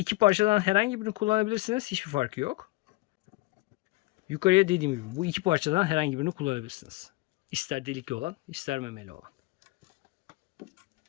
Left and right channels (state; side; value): quieter; right; 20.6 dB